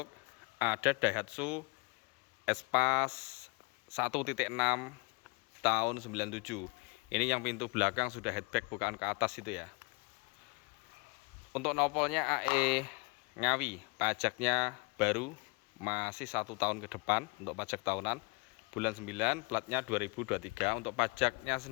ada Daihatsu Espace 1.6 tahun 97. Ini yang pintu belakang sudah headback, bukaan ke atas itu ya. Untuk nopolnya AE Ngawi, pajaknya baru, masih 1 tahun ke depan untuk pajak tahunan, bulan 9, platnya 2023. Untuk pajaknya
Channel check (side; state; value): right; quieter; 30.6 dB